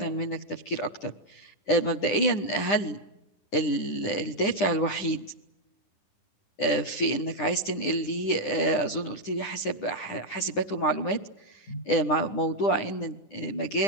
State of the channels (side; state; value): right; late; 10 ms